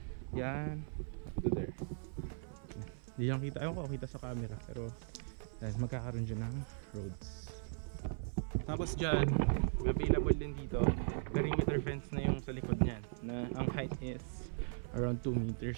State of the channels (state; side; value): silent; left; 52 dB below the other